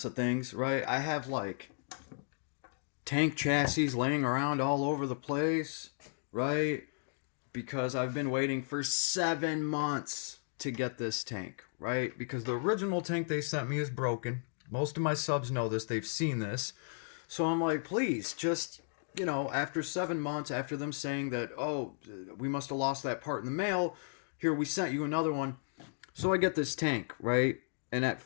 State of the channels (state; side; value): silent; right; digital silence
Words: of things, right? I have like tank chassis laying around all over the place, right? Because I've been waiting for 7 months to get this tank, right? Because the original tank they sent me is broken. Most of my subs know this, they've seen this. So I'm like, please, just, after 7 months, after them saying that, oh, we must have lost that part in the mail, here, we sent you another one. So I get this tank, right? And at